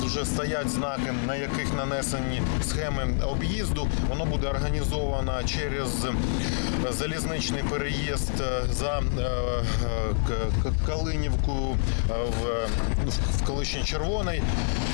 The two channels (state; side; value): silent; right; 57 dB below the other